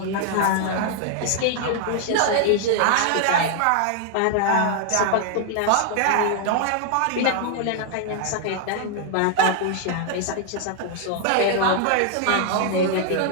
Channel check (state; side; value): different; both; correlation 0.00